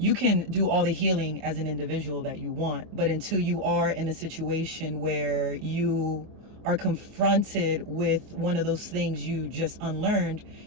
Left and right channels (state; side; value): late; left; 24 ms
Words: can do all the healing as an individual that you want, but until you are in a situation where you are confronted with one of those things you just unlearned,